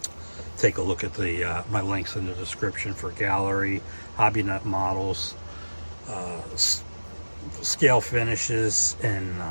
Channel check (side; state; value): both; inverted; correlation -1.00